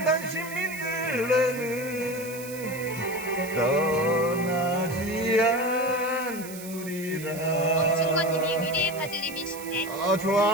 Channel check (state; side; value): noise; right; hiss, 13 dB below the sound